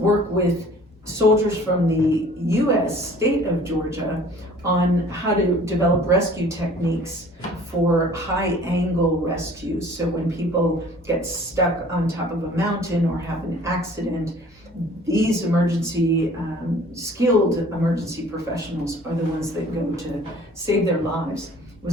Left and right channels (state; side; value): normal; both; correlation 0.50